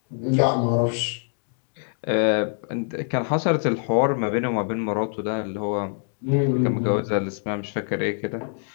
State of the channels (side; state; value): right; silent; 59 dB below the other